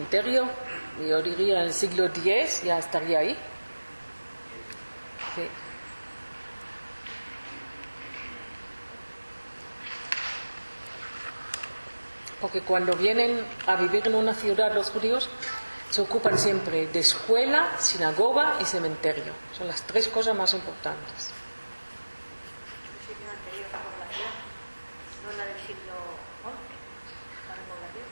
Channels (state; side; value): inverted; both; correlation -1.00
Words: yo diría en el siglo X ya estaría ahí. Sí. Porque cuando vienen a vivir en una ciudad los judíos, se ocupan siempre de escuela, sinagoga y cementerio. Son las 3 cosas más importantes.